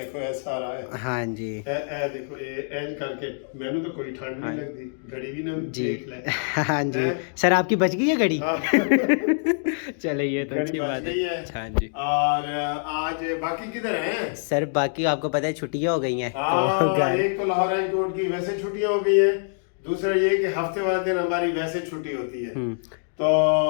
اے سارا ہے۔ ہاں جی اے دیکھو اینج کر کے مینوں تو کوئی ٹھنڈ نہیں لگتی، گھڑی بھی نہ جی دیکھ لے۔ ہاں جی سر، آپ کی بچ گئی ہے گھڑی؟ ہاں، چلے یہ تو گھڑی اچھی بچ بات گئی ہے۔ ہے۔ ہاں جی اور آج باقی کدھر ہیں؟ سر باقی آپ کو پتہ ہے چھٹیاں ہو گئی ہیں تو ہاں، گھر۔ ایک تو لاہور ہائی کورٹ کی ویسے چھٹیاں ہو گئی ہیں، دوسرا یہ کہ ہفتے والے دن ہماری ویسے چھٹی ہوتی ہے۔ تو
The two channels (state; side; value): silent; right; digital silence